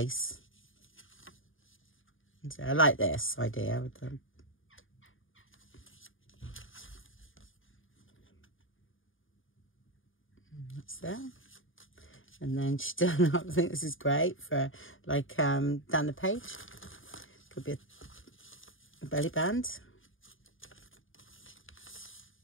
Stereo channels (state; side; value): late; right; 0.58 ms